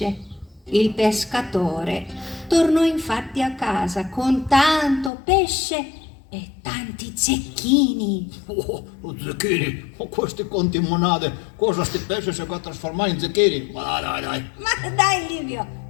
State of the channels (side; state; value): right; drops out; at 5.1 s